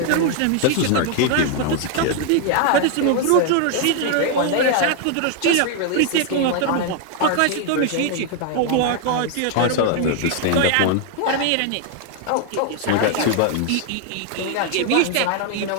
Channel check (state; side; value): different; both; correlation 0.00